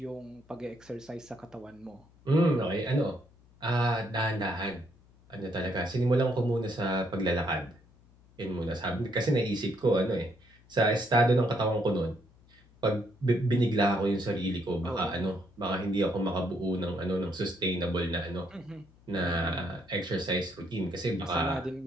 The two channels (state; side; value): noise; left; hum, 28 dB below the sound